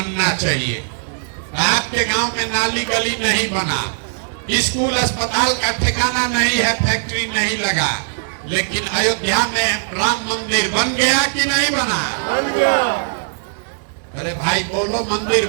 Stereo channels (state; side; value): silent; left; digital silence